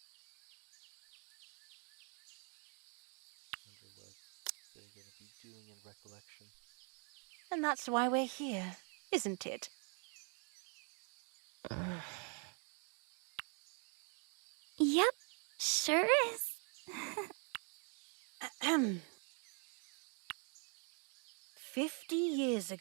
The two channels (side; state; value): left; quieter; 39.8 dB